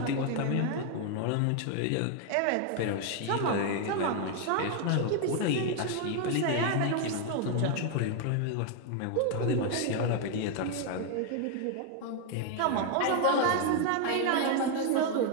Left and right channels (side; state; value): both; different; correlation 0.01